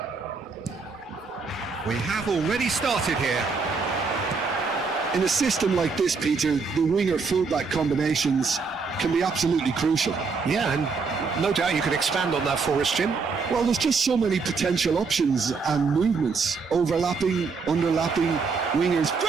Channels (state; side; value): quieter; left; 4.8 dB